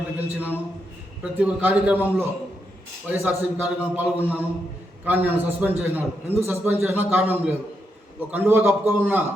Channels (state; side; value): normal; both; correlation 0.82